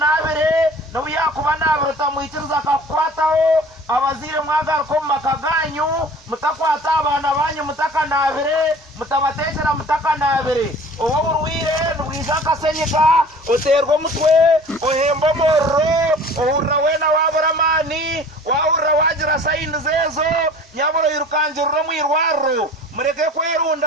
no yakuba nabere tamwikiriza akakwataho abazire mwagar ko makaganyu mutakwata abana banyu mutakanabere mutabatekera mutakanabere owo urwire nubwizaka senyika uterwa mutwe ohembo morro ohurra wena waburamani wahurra wagira sayini zezo nyaburo yirukanjurro mwirwaro mureke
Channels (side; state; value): both; normal; correlation 0.45